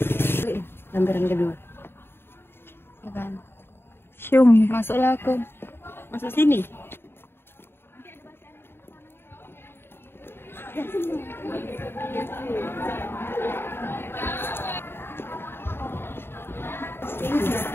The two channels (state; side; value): late; right; 0.11 ms